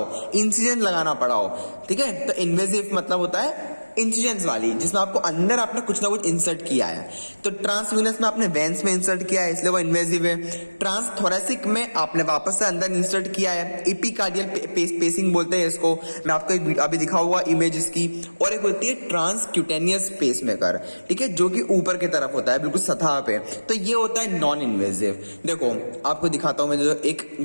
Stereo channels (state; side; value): inverted; both; correlation -1.00